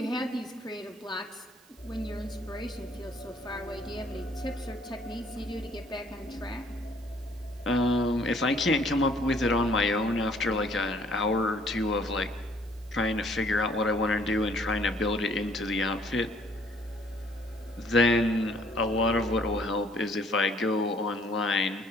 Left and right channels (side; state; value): right; noise; hiss, 28 dB below the sound